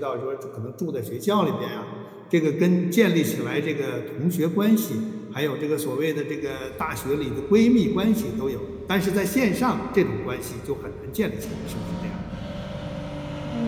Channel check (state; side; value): identical; both; correlation 1.00